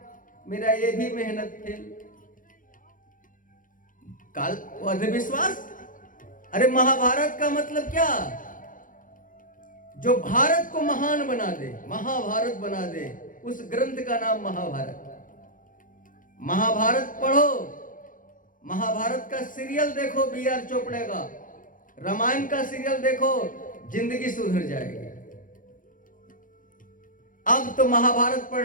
मेरा ये भी मेहनत फेल। काल अंधविश्वास। अरे महाभारत का मतलब क्या? जो भारत को महान बना दे, महाभारत बना दे, उस ग्रंथ का नाम महाभारत। महाभारत पढ़ो, महाभारत का सीरियल देखो B.R. चोपड़े का, रामायण का सीरियल देखो, जिंदगी सुधर जाएगी। अब तो महाभारत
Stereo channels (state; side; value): late; right; 0.39 ms